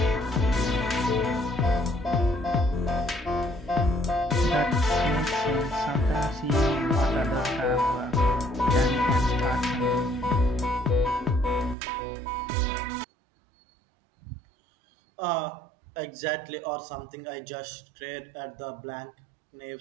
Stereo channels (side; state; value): left; drops out; at 11.8 s